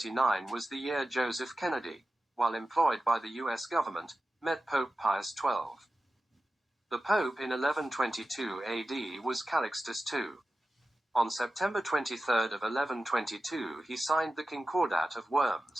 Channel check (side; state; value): both; normal; correlation 0.93